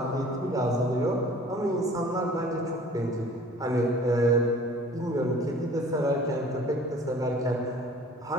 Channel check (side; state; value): both; normal; correlation 0.49